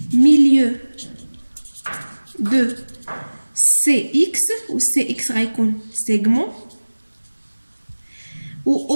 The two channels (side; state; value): both; inverted; correlation -1.00